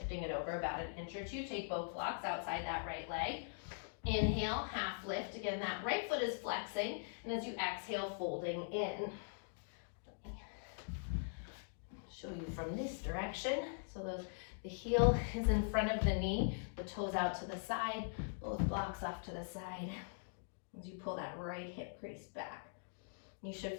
it over about an inch or two. Take both blocks outside that right leg. Inhale, half lift. Again, that right foot is flexing. And as you exhale, folding in. Show you from this direction. So the heel is in front of the knee. The toes out to the side. Both blocks off to the side. As you pull that right hip crease back. You should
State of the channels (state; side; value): silent; right; digital silence